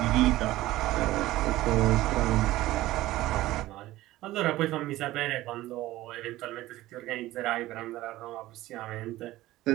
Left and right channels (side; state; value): left; quieter; 16.6 dB